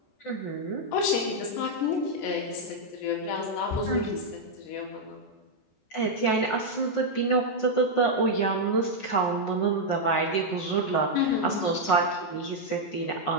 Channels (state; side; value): late; right; 14 ms